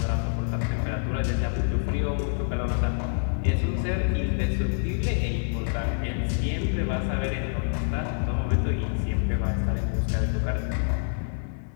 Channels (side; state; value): right; silent; 60 dB below the other